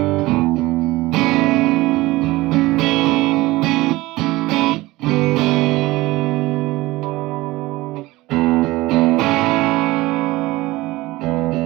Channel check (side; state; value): left; quieter; 19.5 dB